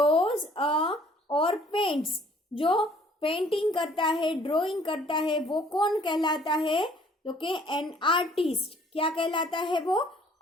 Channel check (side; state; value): both; normal; correlation 0.58